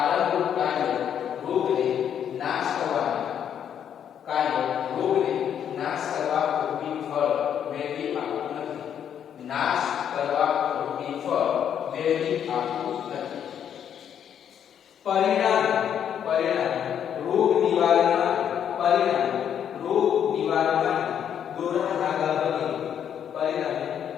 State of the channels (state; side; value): quieter; right; 9.0 dB